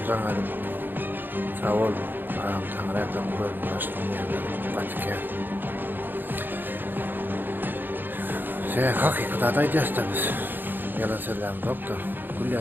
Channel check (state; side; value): late; left; 0.093 ms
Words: Jaňa sağ ol. Tanrı'dan koyulmuştum yani. Vatikan. Hakikaten da iddiasınız. Yalan söylem doktor.